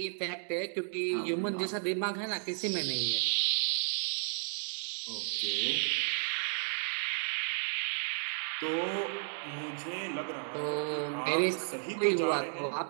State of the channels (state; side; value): silent; left; digital silence